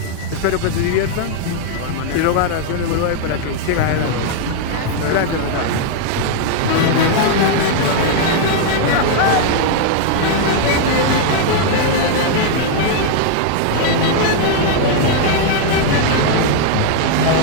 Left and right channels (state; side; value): different; both; correlation -0.01